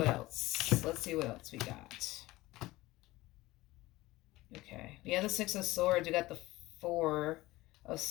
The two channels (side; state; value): right; quieter; 18.9 dB